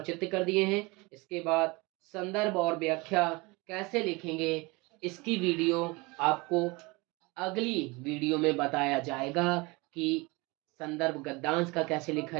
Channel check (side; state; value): left; quieter; 25.2 dB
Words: चित्र कर दिए हैं। इसके बाद संदर्भ और व्याख्या कैसे लिखेंगे इसकी वीडियो आपको अगली वीडियो में बताया जाएगा कि संदर्भ गद्यांश का कैसे लिखा